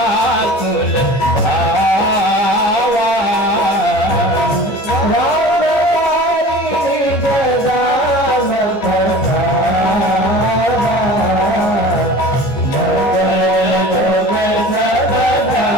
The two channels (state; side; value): late; right; 14 ms